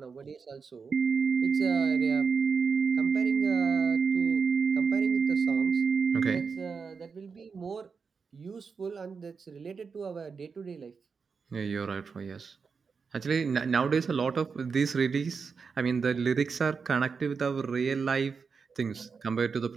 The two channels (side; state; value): left; quieter; 5.4 dB